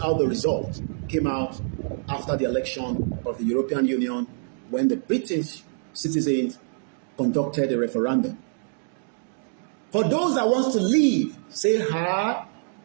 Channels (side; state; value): left; silent; digital silence